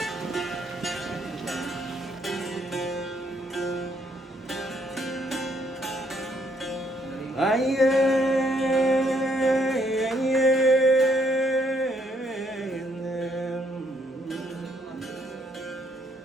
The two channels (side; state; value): both; normal; correlation 0.70